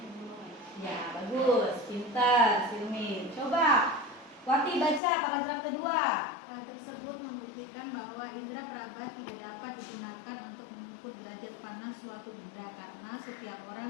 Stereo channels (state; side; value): drops out; right; at 5.0 s